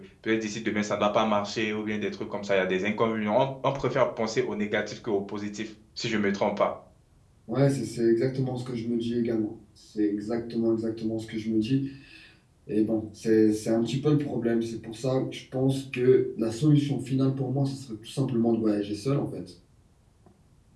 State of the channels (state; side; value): identical; both; correlation 1.00